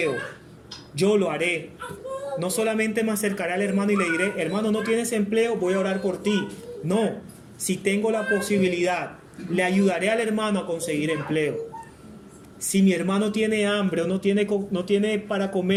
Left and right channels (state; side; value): identical; both; correlation 1.00